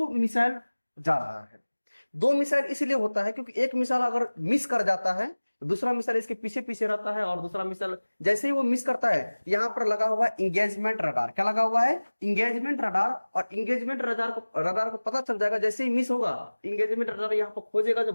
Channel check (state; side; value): inverted; both; correlation -1.00